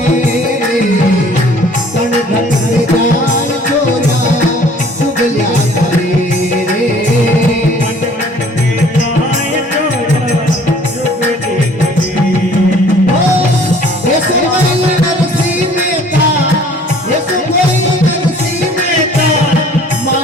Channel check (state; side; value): normal; both; correlation 0.54